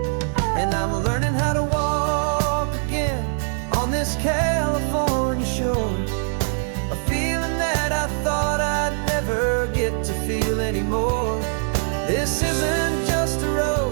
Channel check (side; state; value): left; silent; digital silence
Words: And I'm learning how to walk again on this California shore, a feeling that I thought I'd never get to feel anymore. This isn't just a